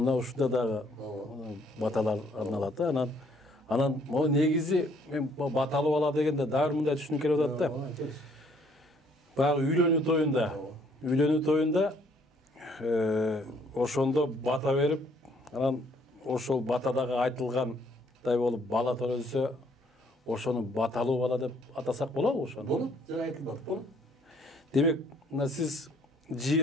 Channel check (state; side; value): normal; both; correlation 0.64